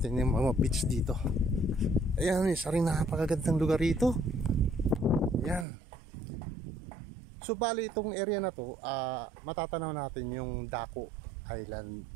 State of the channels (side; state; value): left; drops out; at 5.7 s